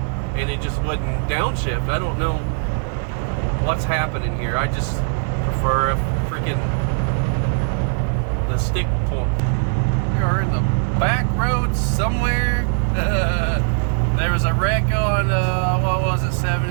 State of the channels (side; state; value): left; silent; 65 dB below the other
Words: and it just wouldn't downshift. I don't know what's happening here. I just prefer a freaking the stick pull. We are in the back roads somewhere. There was a wreck on, what was it,